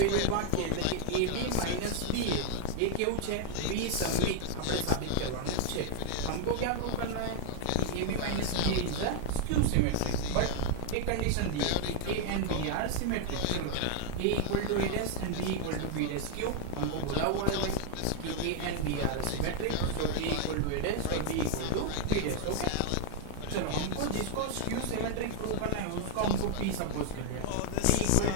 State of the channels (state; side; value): different; both; correlation 0.00